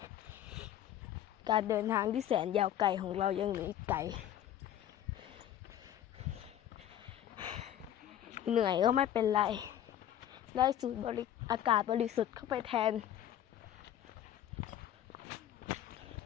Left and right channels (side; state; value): right; quieter; 11.2 dB